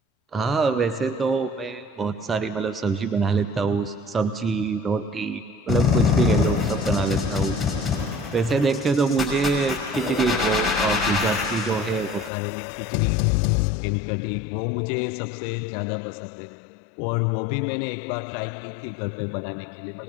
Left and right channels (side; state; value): right; drops out; at 12.3 s